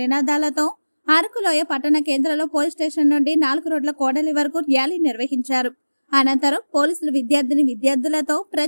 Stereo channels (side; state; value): both; inverted; correlation -1.00